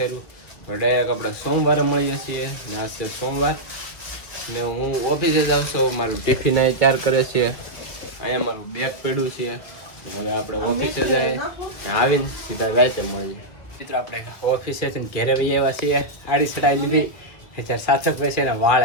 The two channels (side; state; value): right; late; 2.1 ms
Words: ડાયરેક્ટ આપણે સોમવારે મળીએ છીએ ને. આજ છે સોમવાર ને હું ઓફિસે જાઉં છું. મારું ટિફિન અહીં 4 કરે છે. અહીંયા મારું બેગ પડ્યું છે. હવે આપણે ઓફિસે જાય ને આવીને સીધા રાતે મળીએ. મિત્રો આપણે ઓફિસેથી ઘેરે વહી આવ્યા છીએ. આડી ચડાઈ લીધી. અત્યારે સાર્થકભાઈ છે ને